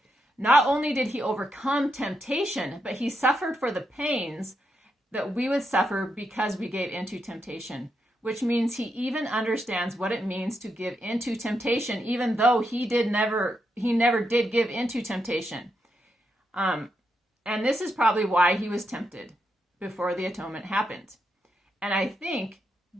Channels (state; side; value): normal; both; correlation 0.82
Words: Not only did he overcome temptation, but he suffered for the pains that we would suffer because we gave into temptation, which means he even understands what it means to give into temptation, even though he never did give into temptation. And this is probably why he was tempted before the atonement happened. And I think